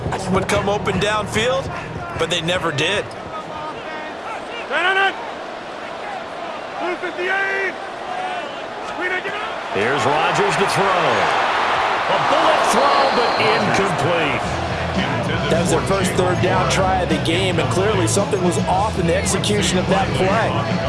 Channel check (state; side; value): identical; both; correlation 1.00